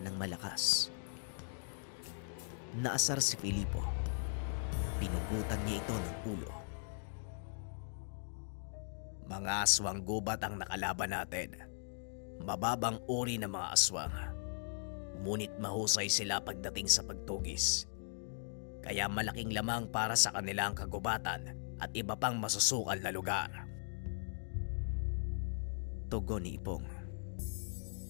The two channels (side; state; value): right; silent; digital silence